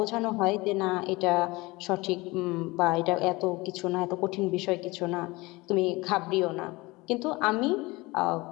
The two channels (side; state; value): right; quieter; 22.4 dB